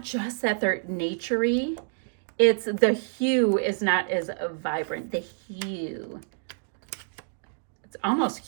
just that they're naturey. It's the hue is not as vibrant. The hue. It's almost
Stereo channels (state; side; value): silent; left; digital silence